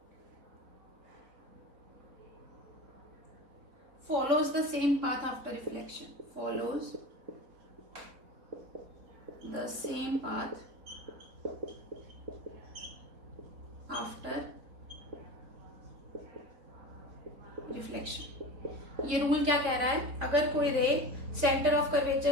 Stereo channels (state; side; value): late; left; 4.0 ms